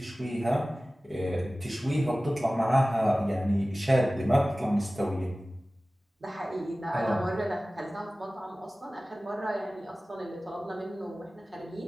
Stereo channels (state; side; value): normal; both; correlation 0.97